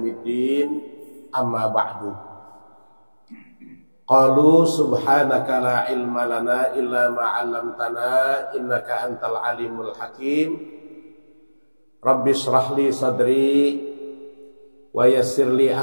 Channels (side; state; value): both; inverted; correlation -1.00